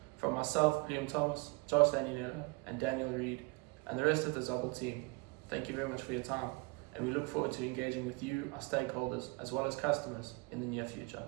From myself, Liam Thomas, Josh Daniela, and Daniel Reed, and the rest of the Zubble team, thank you very much for your time, and we look forward to engaging with you, our stakeholders, as well as customers in the near future.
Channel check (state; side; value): quieter; left; 27.8 dB